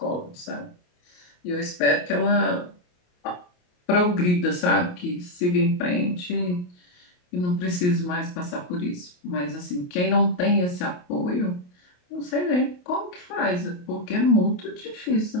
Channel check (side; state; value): right; late; 28 ms